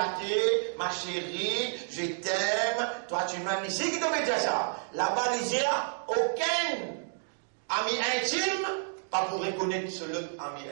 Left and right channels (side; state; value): left; silent; digital silence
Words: ma chérie, je t'aime, toi tu m'aimes. Ici, qui devait dire ça? Là-bas, il dit, aucun ami intime, pas pour reconnaître ce l'autre ami